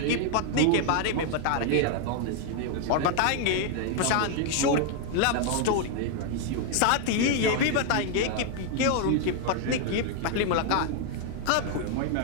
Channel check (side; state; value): both; different; correlation 0.00